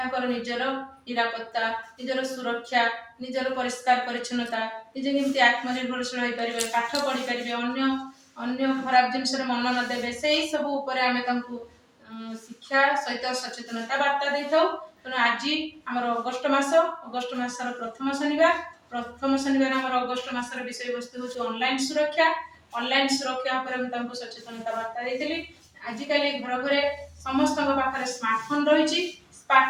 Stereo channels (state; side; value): identical; both; correlation 1.00